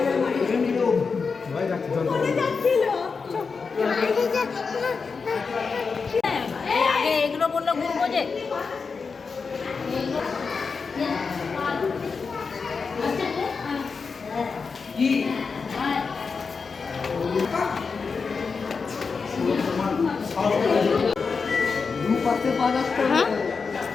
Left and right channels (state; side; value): quieter; right; 5.0 dB